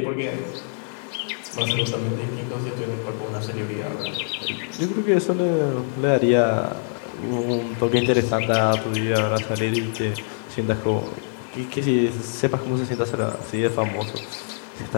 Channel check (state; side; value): silent; right; digital silence